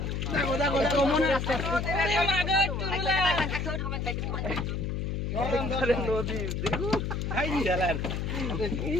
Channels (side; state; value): left; noise; hum, 2 dB below the sound